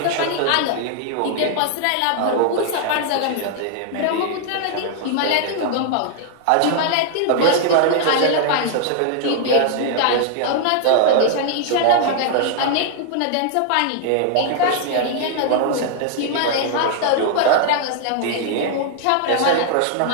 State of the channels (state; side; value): different; both; correlation -0.01